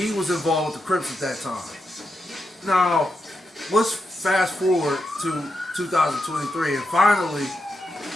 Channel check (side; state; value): both; normal; correlation 0.86